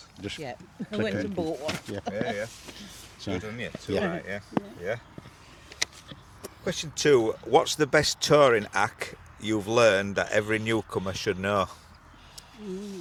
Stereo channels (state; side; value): identical; both; correlation 1.00